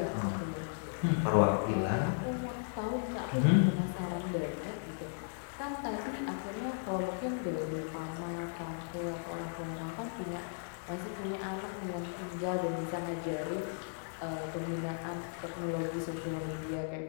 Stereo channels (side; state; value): right; silent; digital silence